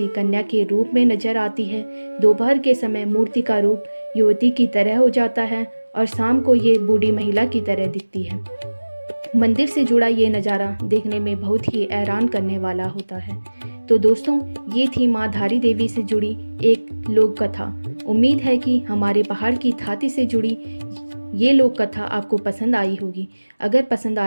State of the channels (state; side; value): inverted; both; correlation -1.00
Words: कन्या के रूप में नजर आती है, दोपहर के समय मूर्ति का रूप युवती की तरह हो जाता है और शाम को ये बूढ़ी महिला की तरह दिखती है। मंदिर से जुड़ा ये नज़ारा देखने में बहुत ही हैरान करने वाला होता है। तो दोस्तों, ये थी माँ धारी देवी से जुड़ी एक लोक कथा। उम्मीद है कि हमारे पहाड़ की थाती से जुड़ी ये लोक कथा आपको पसंद आई होगी। अगर पसंद